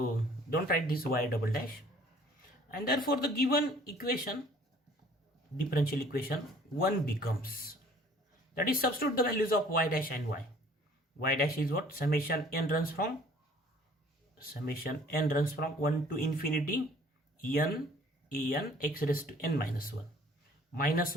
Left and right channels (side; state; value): both; normal; correlation 0.54